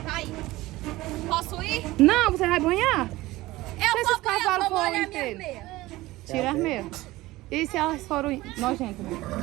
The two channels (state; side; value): quieter; left; 18.5 dB